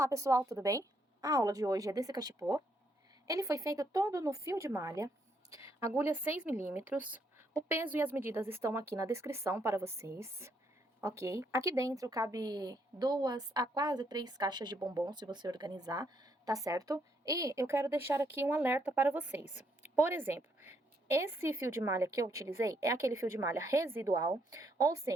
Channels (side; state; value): both; normal; correlation 0.73